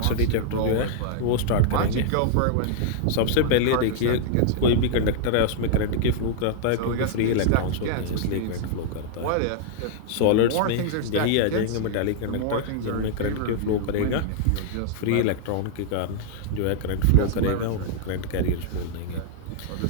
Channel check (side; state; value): both; different; correlation -0.01